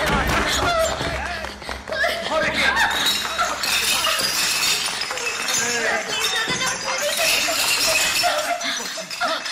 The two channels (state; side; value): identical; both; correlation 1.00